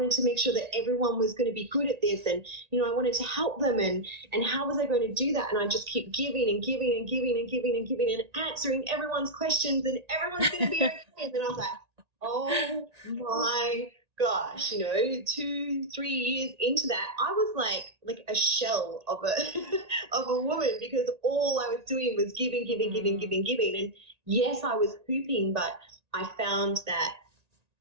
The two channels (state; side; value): late; left; 1.9 ms